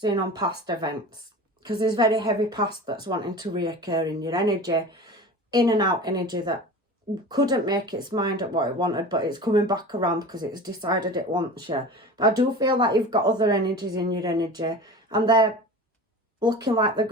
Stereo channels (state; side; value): normal; both; correlation 0.35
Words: on past events, because there's very heavy past that's wanting to reoccur in your energy, in and out energy that couldn't make its mind up what it wanted, but it's coming back around because it's decided it wants you. But I do feel like you've got other energies in your energy, and they're looking like they're